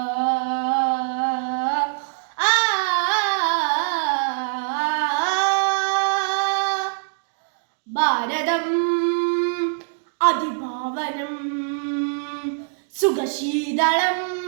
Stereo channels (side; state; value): left; silent; digital silence